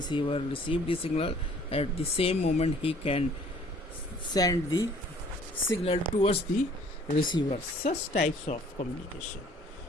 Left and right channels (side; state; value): both; normal; correlation 0.56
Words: receive the signal. At the same moment he can send the signal towards the receiver. Such types of communication